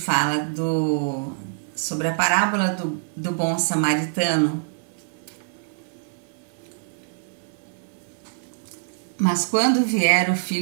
sobre a parábola do bom samaritano. Mas quando vier o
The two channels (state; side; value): silent; left; digital silence